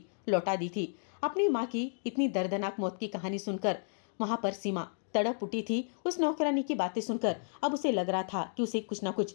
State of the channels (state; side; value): silent; right; digital silence